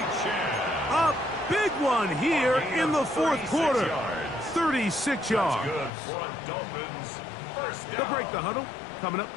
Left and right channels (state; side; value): drops out; right; at 5.9 s